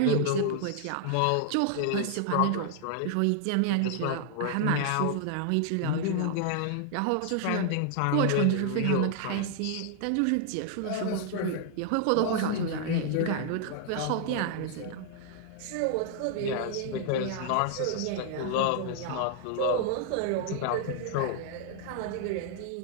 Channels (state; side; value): different; both; correlation 0.00